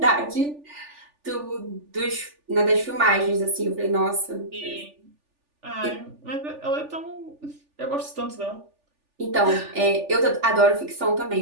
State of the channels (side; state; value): left; late; 3.4 ms